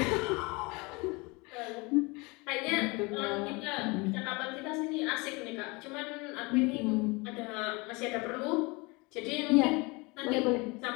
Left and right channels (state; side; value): quieter; right; 26.5 dB